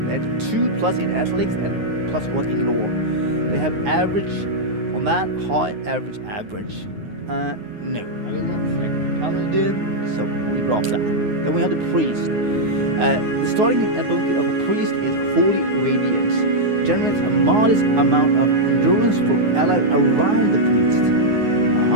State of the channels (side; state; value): left; late; 9.5 ms